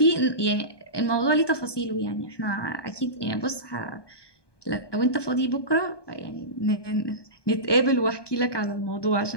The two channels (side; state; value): right; late; 1.2 ms